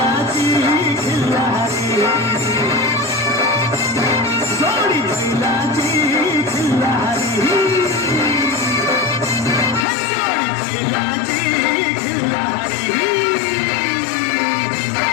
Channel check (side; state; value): right; drops out; at 9.9 s